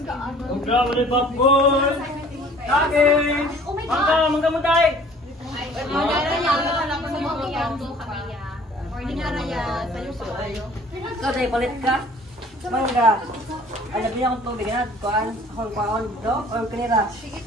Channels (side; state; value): both; normal; correlation 0.51